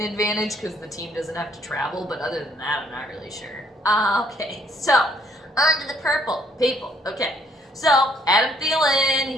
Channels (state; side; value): normal; both; correlation 0.65